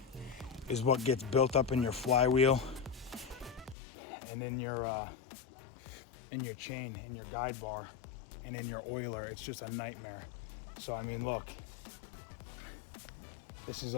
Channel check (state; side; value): drops out; right; at 3.8 s